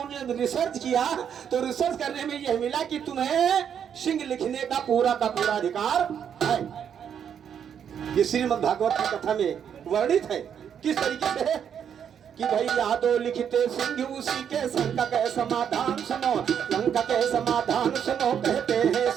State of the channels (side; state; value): left; quieter; 8.3 dB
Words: ने रिसर्च किया तो रिसर्च करने में यह मिला कि तुम्हें सिंह लिखने का पूरा अधिकार है। ये श्रीमद् भागवत की कथा में वर्णित है। किस तरीके से कि भाई यादव लिखते सिंह उसी के संकट के समाधान सुनो। लंका के समाधान सुनो। कहते हैं